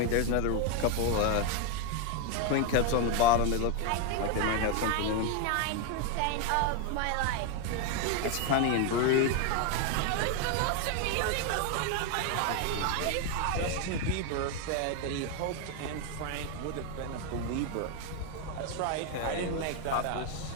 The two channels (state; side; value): different; both; correlation 0.01